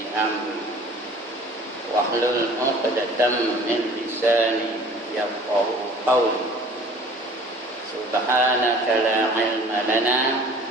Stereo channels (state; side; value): normal; both; correlation 0.48